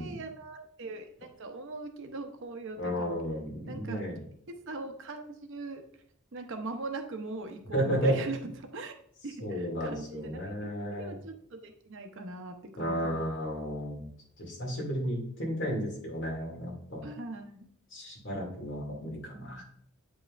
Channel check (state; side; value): normal; both; correlation 0.35